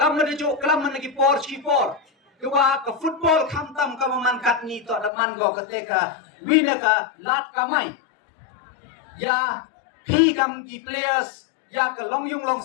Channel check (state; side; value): drops out; right; at 5.1 s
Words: ada juk kelam man ki por ki por. Kewa ka football kam tam ka man kat ni tok da man go ketika win ka lat kamai. Ya pi kam ki players ya ka long yung long